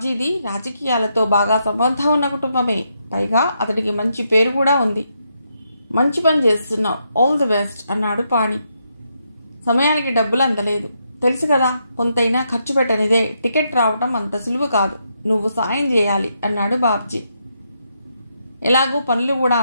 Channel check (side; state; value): both; inverted; correlation -0.80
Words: రాజకీయాలతో బాగా సంబంధం ఉన్న కుటుంబమే. పైగా అతడికి మంచి పేరు కూడా ఉంది. మంచి పని చేస్తున్నావు, ఆల్ ది బెస్ట్ అన్నాడు పాణి. సమయానికి డబ్బులు అందలేదు. తెలుసు కదా, కొంతైనా ఖర్చు పెట్టనిదే టికెట్ రావటం అంత సులువు కాదు. నువ్వు సాయం చేయాలి అన్నాడు బాబ్జీ. ఎలాగూ పనులు కూడా